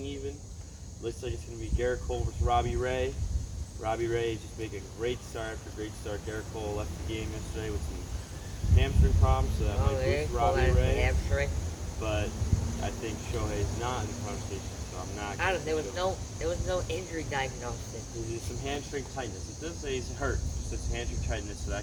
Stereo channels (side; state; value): both; identical; correlation 1.00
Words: even. Looks like it's going to be Garrett Cole versus Robbie Ray. Robbie Ray just making a great start after great start. Garrett Cole left the game yesterday with some hamstring problems, so that might boost Robbie Ray. Hamstring. But I think Shohei is not in the conversation, so I'm not. There was no injury diagnosis. There's some hamstring tightness. It does say he's hurt. Just it's hamstring tightness, so